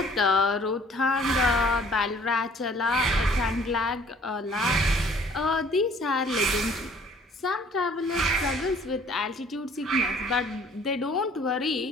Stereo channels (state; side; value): normal; both; correlation 0.56